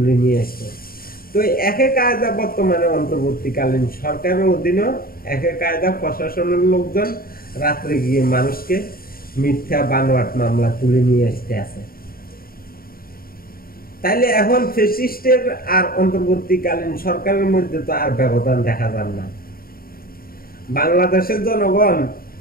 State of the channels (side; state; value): right; late; 0.43 ms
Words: নিয়ে আসতো। তো একই কায়দা বর্তমানে অন্তর্বর্তীকালীন সরকারের অধীনে একই কায়দা প্রশাসনের লোকজন রাত্রে গিয়ে মানুষকে মিথ্যা বানোয়াট মামলা তুলে নিয়ে আসতে আছে। তাইলে এখন ফ্যাসিস্টের আর অন্তর্বর্তীকালীন সরকারের মধ্যে তো আর ব্যবধান দেখা যায় না। বাংলাদেশের জনগণ